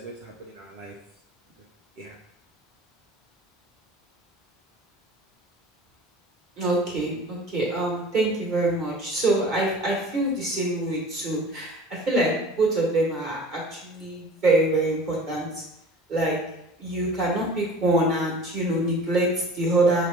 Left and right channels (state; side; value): normal; both; correlation 0.42